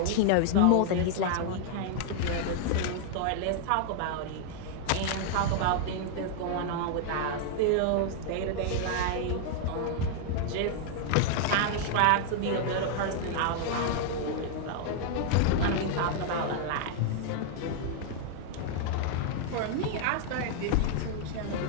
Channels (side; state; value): both; different; correlation 0.00